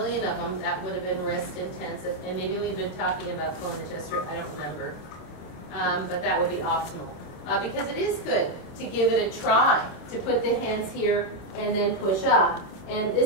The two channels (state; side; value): late; right; 26 ms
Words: of them, that would have been wrist intensive. And maybe we'd been talking about pulling the chest through, I don't remember. But that would be optimal. Because it is good to give it a try, to put the hands here and then push up. And